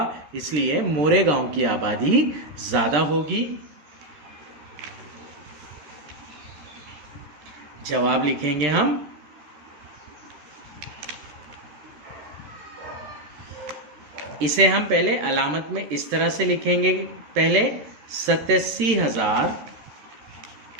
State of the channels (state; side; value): late; left; 13 ms